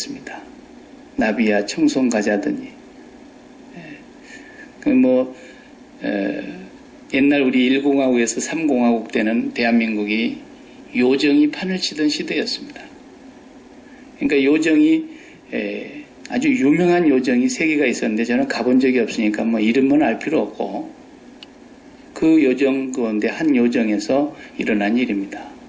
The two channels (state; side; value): identical; both; correlation 1.00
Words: 나비야 청송 가자더니 옛날 우리 1공화국에서 3공화국 때는 대한민국이 요정이 판을 치던 시대였습니다. 그러니까 요정이 아주 유명한 요정이 3개가 있었는데 저는 가본 적이 없으니까 이름은 알 필요 없고 그 요정 가운데 한 요정에서 일어난 일입니다.